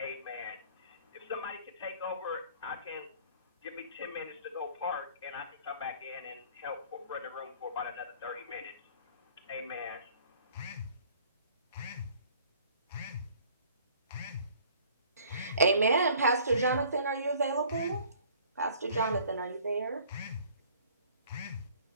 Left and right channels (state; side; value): inverted; both; correlation -0.54